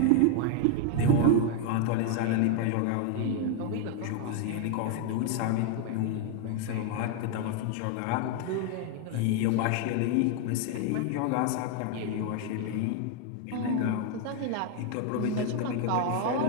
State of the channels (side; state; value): both; different; correlation 0.01